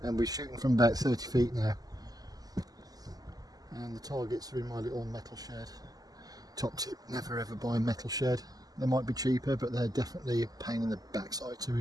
and we're shooting from about 30 feet now. And the targets are in my little metal shed. Top tip, never ever buy a metal shed. They might be cheaper, but they're definitely a pain in the backside to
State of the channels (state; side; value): late; left; 0.18 ms